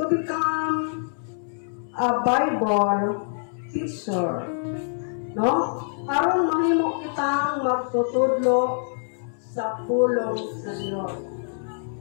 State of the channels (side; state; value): right; silent; 62 dB below the other